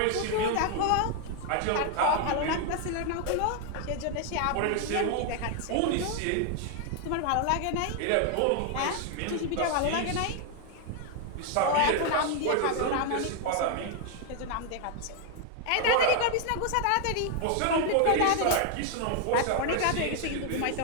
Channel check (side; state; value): both; different; correlation 0.00